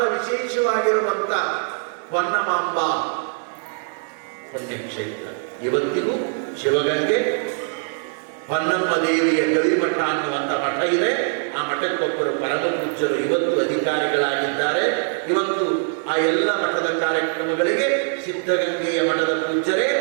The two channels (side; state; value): left; silent; 58 dB below the other